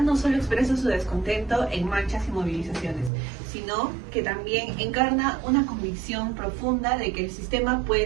no solo expresa su descontento en marchas y movilizaciones, sino que también encarna una convicción profunda de que el sistema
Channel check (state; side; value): drops out; left; at 3.1 s